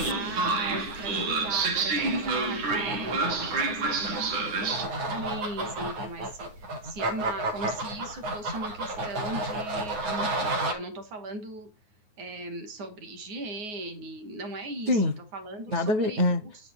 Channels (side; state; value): left; late; 9.5 ms